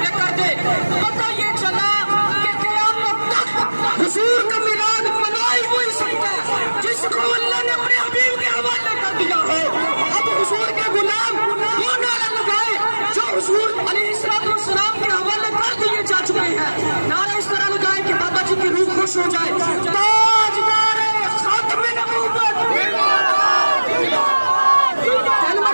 कर दे। पता ये चला कि क़यामत तक हुजूर का मिलाद मना ही वही सकता है जिसको अल्लाह ने अपने हबीब के हवाले कर दिया है। अब हुजूर के गुलाम वो नारा लगाए जो हुजूर अलैहिस्सलाम के हवाले कर दिए जा चुके हैं। नारा इस तरह लगाए कि बाबा जी की रूह खुश हो जाए। ताजदार खातमे नबूवत, पहली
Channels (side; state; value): both; inverted; correlation -1.00